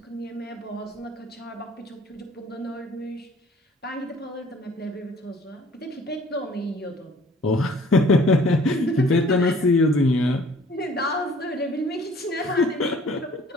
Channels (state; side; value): normal; both; correlation 0.54